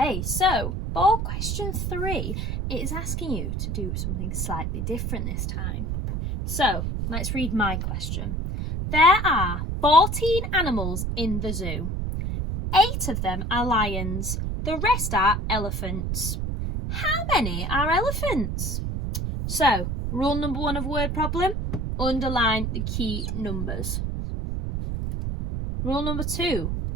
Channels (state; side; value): noise; right; rumble, 2 dB below the sound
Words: so for question 3, it is asking you to do something slightly different this time. So let's read my question. There are 14 animals in the zoo. 8 of them are lions. The rest are elephants. How many are elephants? So, rule number 1 of word problem, underline the key numbers. Rule number 2,